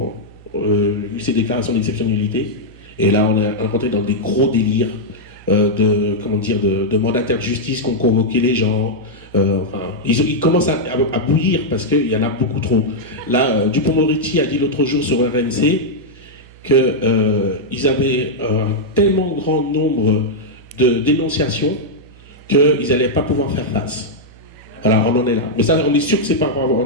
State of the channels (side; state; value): right; noise; hum, 23 dB below the sound